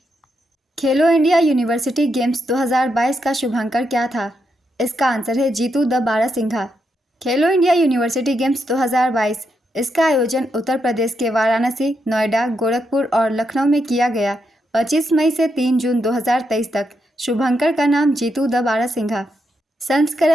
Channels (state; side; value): normal; both; correlation 0.82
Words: खेलो इंडिया यूनिवर्सिटी गेम्स 2022 का शुभांकर क्या था? इसका आंसर है Jitu the barasingha. Khelo India university games 2022 इसका आयोजन उत्तर प्रदेश के वाराणसी, नोएडा, गोरखपुर और लखनऊ में किया गया। 25 मई से 3 जून 2023 तक। शुभंकर का नाम जीतू द बारासिंघा।